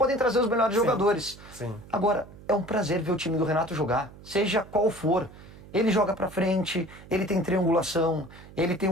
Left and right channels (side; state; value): right; noise; hum, 19 dB below the sound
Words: trazer os melhores jogadores. Sim. Agora, é um prazer ver o time do Renato jogar, seja qual for. Ele joga pra frente, ele tem triangulação, ele tem